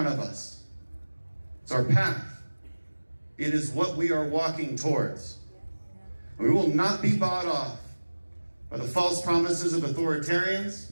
of us. It's our path. It is what we are walking towards. We will not be bought off by the false promises of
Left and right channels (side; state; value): both; inverted; correlation -1.00